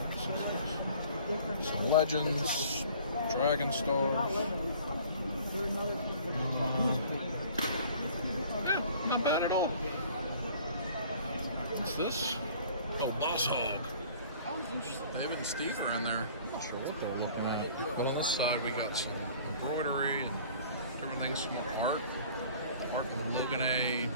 Some Legends, Dragon Stars. Yeah, not bad at all. What's this? Oh, Boss Hog. David and Steve are in there. I'm not sure what they're looking at. But on this side, we got some embroidery and different things, some art. Art of Logan A.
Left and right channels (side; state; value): both; inverted; correlation -0.50